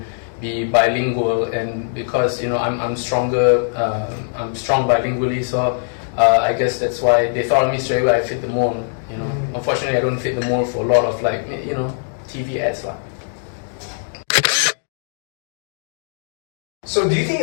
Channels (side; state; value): right; silent; digital silence